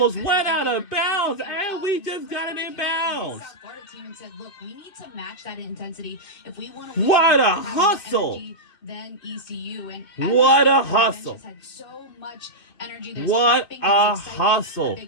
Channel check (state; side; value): late; right; 2.5 ms